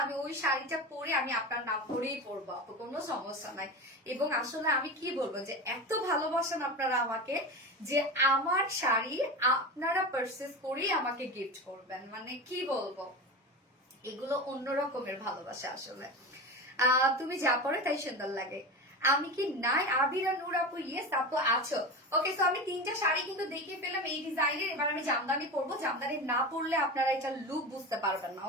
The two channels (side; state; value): both; normal; correlation 0.25